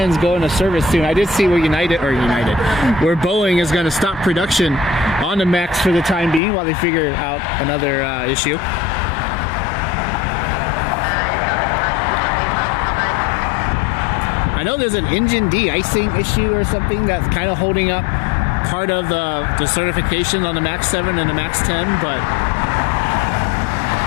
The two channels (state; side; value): drops out; right; at 6.4 s